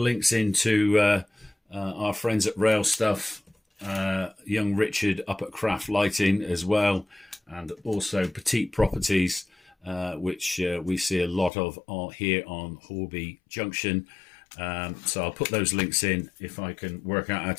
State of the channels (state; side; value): drops out; right; at 11.5 s